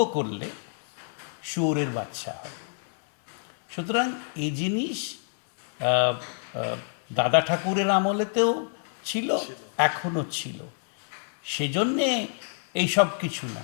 করলে শুয়োরের বাচ্চা হয়। সুতরাং এই জিনিস দাদা ঠাকুরের আমলেতেও ছিল, এখনো ছিল। সেজন্যে এইসব কিছু না।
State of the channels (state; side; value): silent; right; digital silence